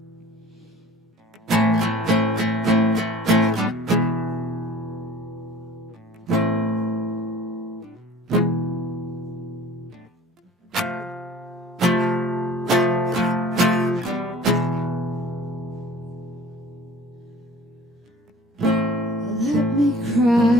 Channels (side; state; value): both; normal; correlation 0.46